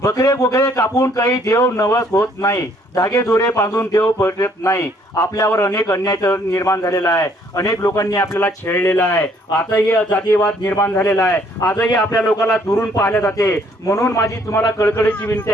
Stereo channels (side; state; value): both; normal; correlation 0.64